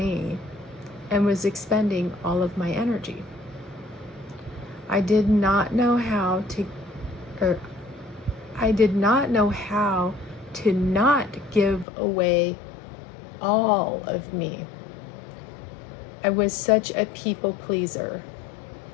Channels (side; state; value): right; drops out; at 11.9 s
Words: and was expending all of my energy. I did not know how to not give away all of me. I was such a people pleaser.